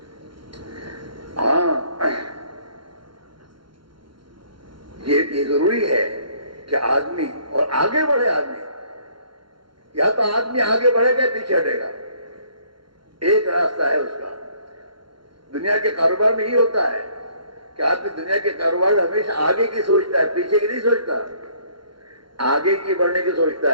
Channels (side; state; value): left; late; 0.73 ms